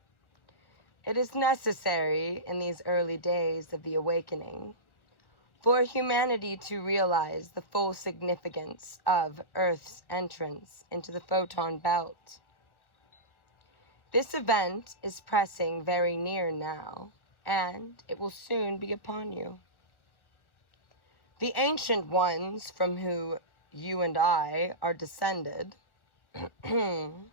It is necessary in these early days of the awakening for humanity to realize the full significance of Earth's entrance into the photon belt. This event is pressing very near now, and it will soon be upon you. The ancient ones from whom you and I are descended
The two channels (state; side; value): late; right; 1.2 ms